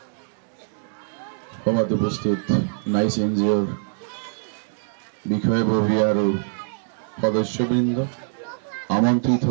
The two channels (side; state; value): left; silent; digital silence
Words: সভাত উপস্থিত নাইচ এনজিঅ'ৰ বিষয়ববী আৰু সদস্যবৃন্দ, আমন্ত্ৰিত